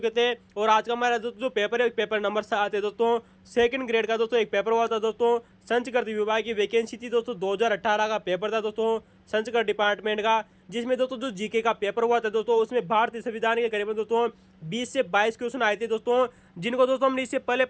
थे और आज का हमारा दोस्तों जो पेपर है पेपर नंबर 7 है दोस्तों। सेकंड ग्रेड का दोस्तों एक पेपर हुआ था दोस्तों, संस्कृत विभाग की वैकेंसी थी दोस्तों, 2018 का पेपर था दोस्तों संस्कृत डिपार्टमेंट का, जिसमें दोस्तों जो जीके का पेपर हुआ था दोस्तों उसमें भारतीय संविधान के करीबन दोस्तों 20 से 22 क्वेश्चन आए थे दोस्तों, जिनको दोस्तों हमने इससे पहले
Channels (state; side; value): identical; both; correlation 1.00